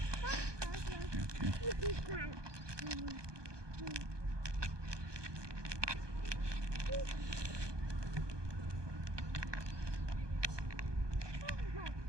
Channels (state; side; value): late; left; 1.2 ms